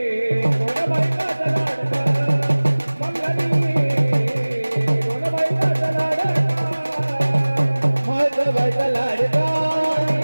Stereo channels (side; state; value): both; inverted; correlation -1.00